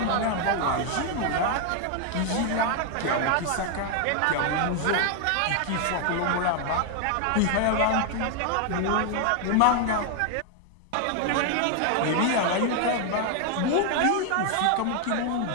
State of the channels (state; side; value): different; both; correlation 0.00